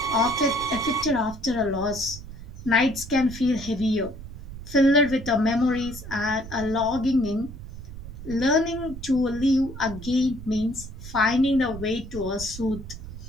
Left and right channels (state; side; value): noise; right; rumble, 12 dB below the sound